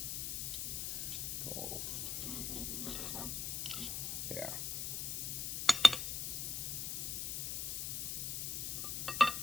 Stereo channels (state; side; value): noise; left; hiss, 2 dB below the sound